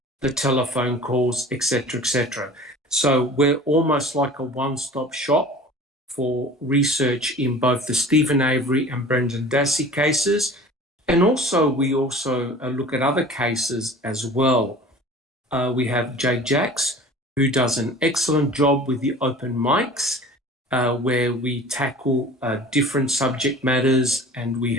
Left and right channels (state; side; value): normal; both; correlation 0.43